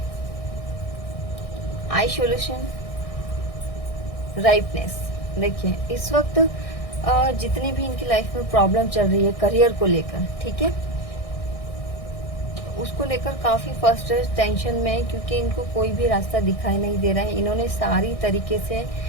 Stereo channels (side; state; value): right; late; 1.6 ms